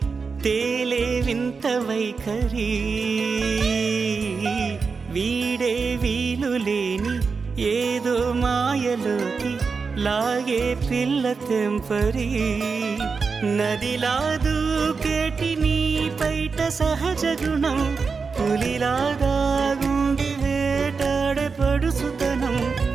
తేలే వింత వైఖరి వీడే వీలు లేని ఏదో మాయలోకి లాగే పిల్ల తెంపరి నదిలా దూకేటి నీ పైట సహజ గుణం పులిలాగా గుండి వేటాడే పడుసుతనం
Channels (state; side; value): quieter; left; 4.9 dB